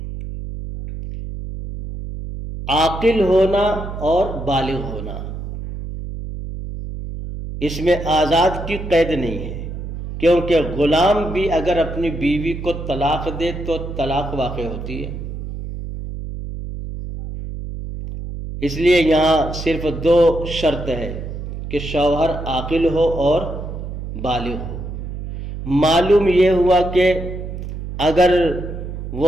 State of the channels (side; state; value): right; noise; hum, 8 dB below the sound